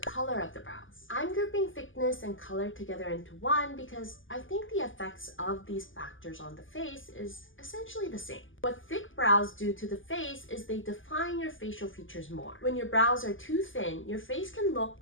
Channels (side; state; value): right; late; 0.58 ms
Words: of the brows. I'm grouping thickness and color together into one because I think the effects of these factors on the face is essentially the same. What thick brows do to the face is they define your facial features more. When your brows are too thin, your face can look